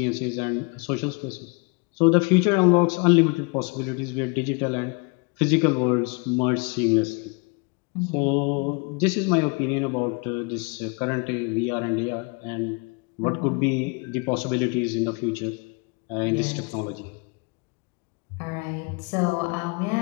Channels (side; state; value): right; quieter; 31.6 dB